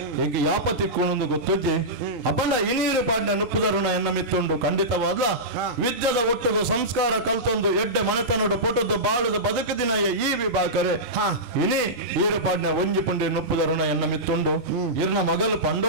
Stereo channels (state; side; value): normal; both; correlation -0.15